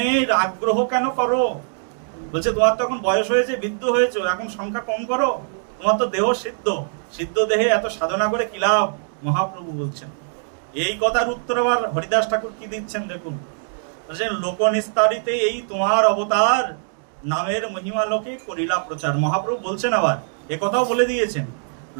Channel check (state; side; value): silent; left; digital silence